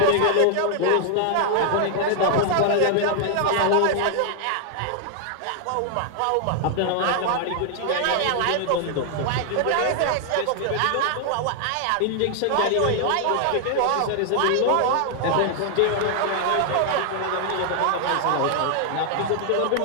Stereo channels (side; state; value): both; different; correlation 0.00